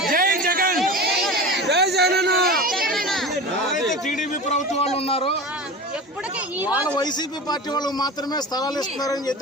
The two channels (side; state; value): both; normal; correlation 0.31